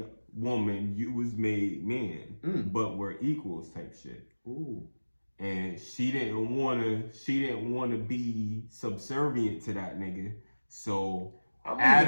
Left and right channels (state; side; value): inverted; both; correlation -1.00